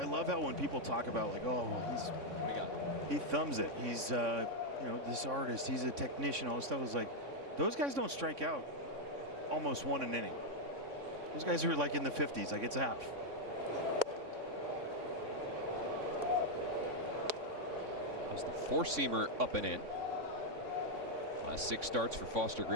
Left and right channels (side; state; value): left; late; 3.6 ms